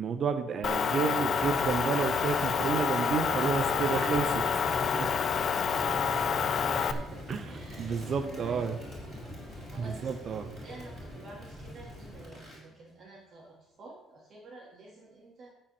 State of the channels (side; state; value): both; normal; correlation 0.69